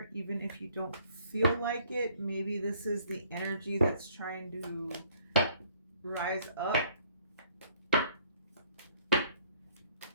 even if you don't feel like it. Maybe this is the energy that's trying to rise up.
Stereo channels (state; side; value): inverted; both; correlation -0.63